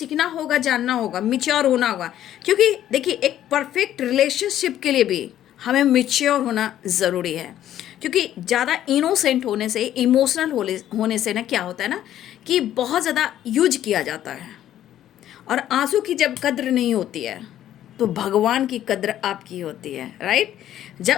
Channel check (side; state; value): right; quieter; 11.9 dB